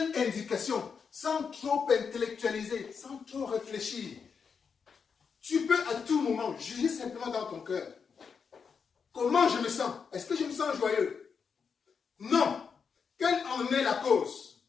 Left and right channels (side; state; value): right; quieter; 6.0 dB